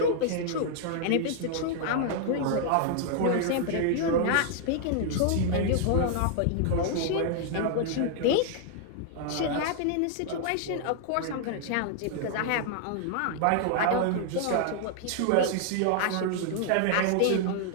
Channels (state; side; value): different; both; correlation -0.01